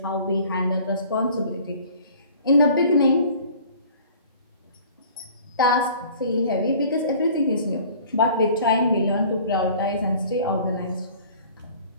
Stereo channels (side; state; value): both; inverted; correlation -0.49